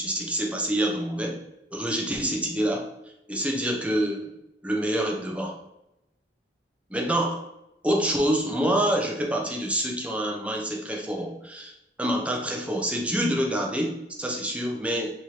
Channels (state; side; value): normal; both; correlation 0.59